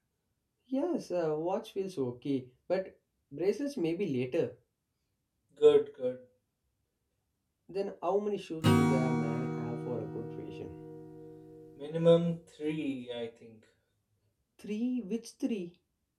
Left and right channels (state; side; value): identical; both; correlation 1.00